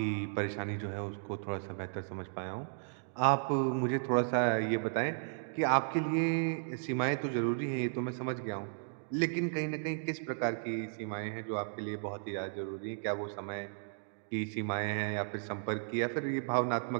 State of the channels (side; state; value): left; silent; digital silence